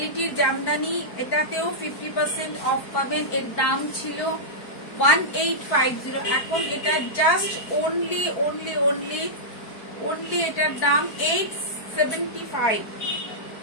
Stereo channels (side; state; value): right; late; 4.5 ms